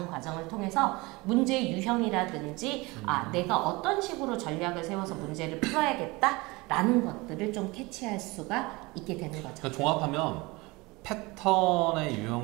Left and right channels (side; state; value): left; quieter; 23.7 dB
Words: 과정을 통해서 문제 유형이라든지 내가 어떤 식으로 전략을 세워서 문제를 풀어야겠다라는 것들을 좀 캐치할 수가 있게 되는 거죠. 그러니까 종합하면 패턴의